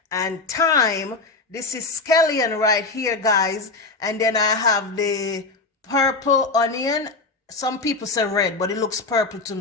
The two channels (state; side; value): quieter; right; 3.7 dB